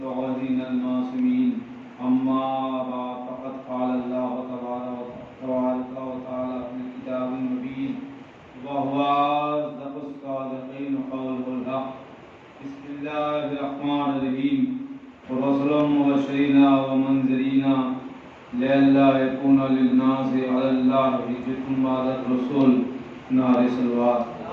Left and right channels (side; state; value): both; identical; correlation 1.00